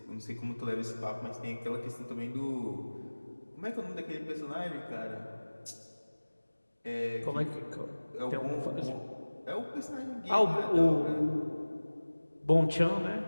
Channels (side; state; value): both; inverted; correlation -1.00